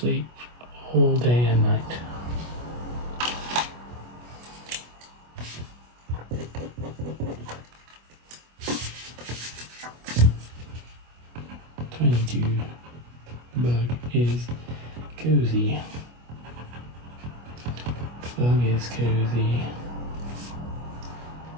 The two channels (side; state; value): left; late; 25 ms